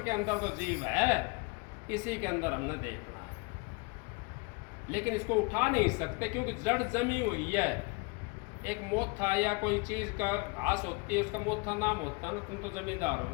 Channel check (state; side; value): quieter; right; 28.4 dB